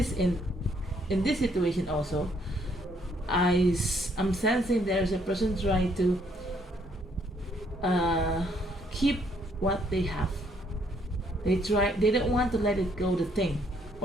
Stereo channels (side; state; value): both; normal; correlation 0.68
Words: in this situation also, I'm sensing there's a person trying to keep what they have. They don't want to let it go, the thing